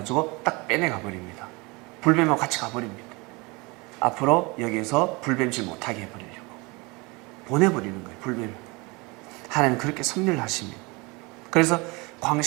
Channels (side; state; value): left; quieter; 26.2 dB